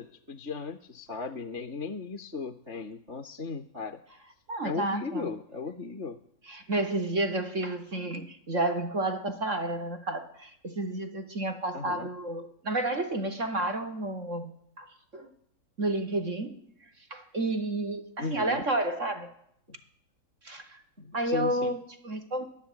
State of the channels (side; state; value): left; late; 3.6 ms